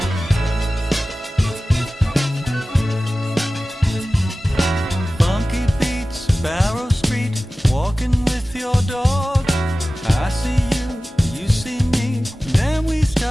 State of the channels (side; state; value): both; normal; correlation 0.96